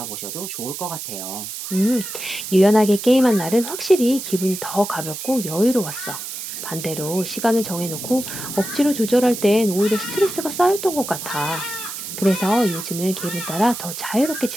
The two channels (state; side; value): noise; right; hiss, 8 dB below the sound